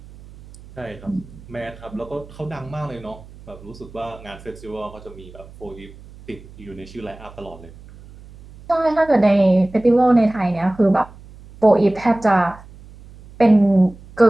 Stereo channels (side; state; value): right; noise; hum, 20 dB below the sound